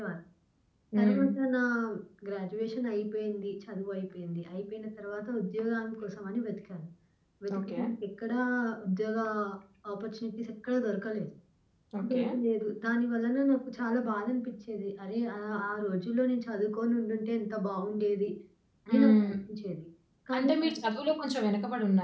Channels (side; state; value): both; identical; correlation 1.00